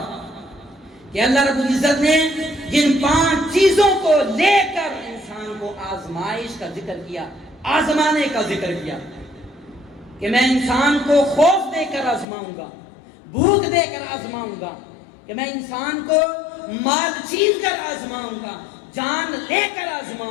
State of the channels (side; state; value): right; drops out; at 12.2 s